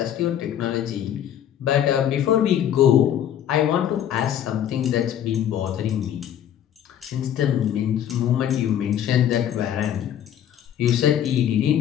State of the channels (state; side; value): quieter; right; 10.2 dB